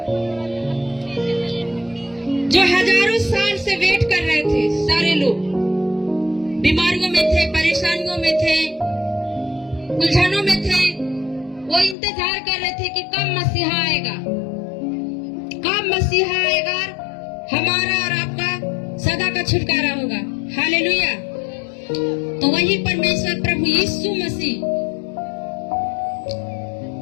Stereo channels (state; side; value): drops out; right; at 12.0 s